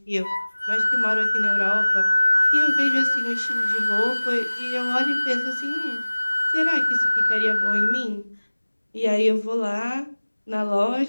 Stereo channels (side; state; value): both; inverted; correlation -1.00